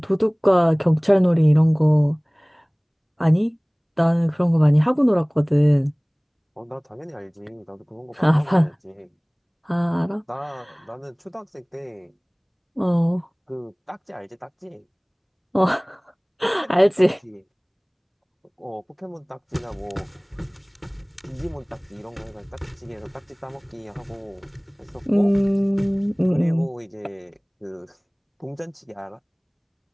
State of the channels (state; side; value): identical; both; correlation 1.00